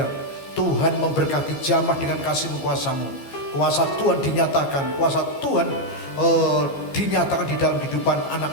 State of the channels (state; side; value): late; right; 15 ms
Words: Tuhan memberkati, jamah dengan kasih-Mu, kuasa-Mu. Kuasa Tuhan dinyatakan, kuasa Tuhan dinyatakan di dalam kehidupan